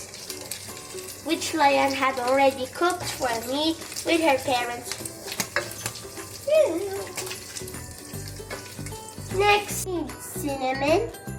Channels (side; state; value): both; identical; correlation 1.00